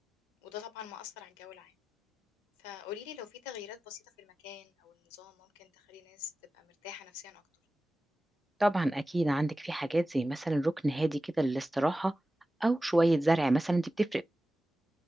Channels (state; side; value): normal; both; correlation 0.95